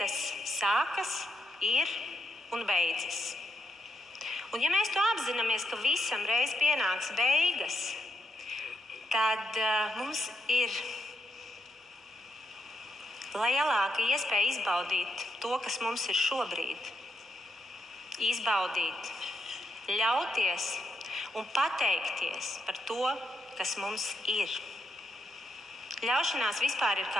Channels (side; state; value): both; normal; correlation 0.82